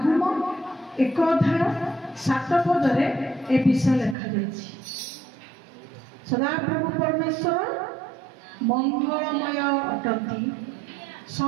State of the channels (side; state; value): left; drops out; at 4.2 s